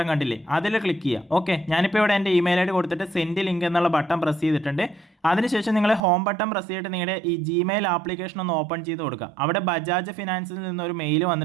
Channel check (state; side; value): drops out; left; at 6.0 s